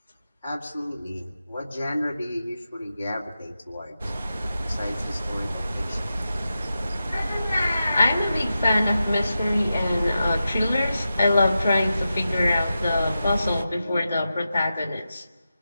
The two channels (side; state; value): both; inverted; correlation -0.91